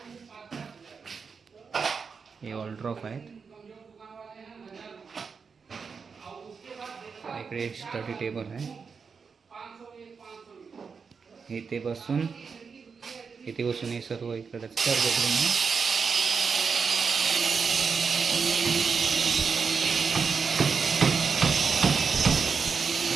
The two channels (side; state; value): left; quieter; 5.6 dB